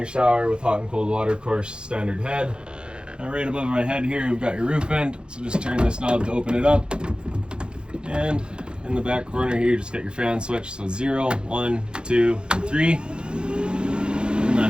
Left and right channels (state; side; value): late; left; 0.051 ms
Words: shower with hot and cold water, of course, standard head. Now right above my head here, we've got your roof vent. So just turn this knob to open it up. And in the back corner here, just get your fan switch. So 0, 1, 2, and 3. And